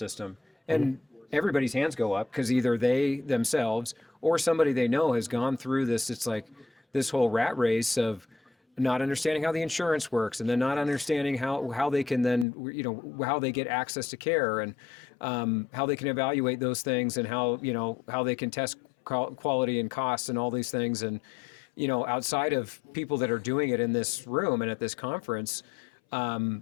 And everybody's hands go up, because either they themselves or somebody they know has gone through this. It's like this whole rat race of not understanding how the insurance works, and then not understanding how they can then, how they get access to care, and how they can evaluate those things, and how they can test quality and costs and all these things. And outside of people that are doing it in this room and at this conference,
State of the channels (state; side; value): drops out; right; at 12.5 s